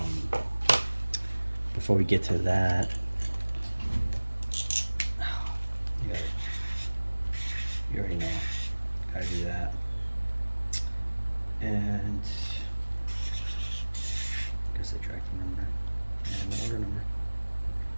Before we get to that, you, gotta, you already know, gotta do that. And I guess the tracking number and the order number.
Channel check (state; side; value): inverted; both; correlation -1.00